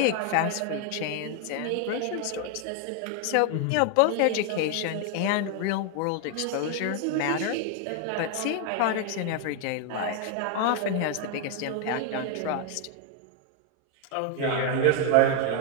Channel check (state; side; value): different; both; correlation 0.00